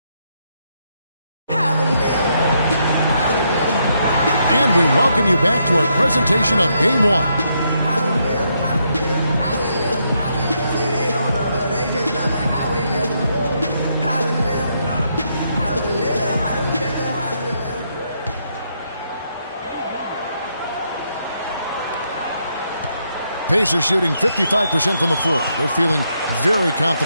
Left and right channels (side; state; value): both; inverted; correlation -0.77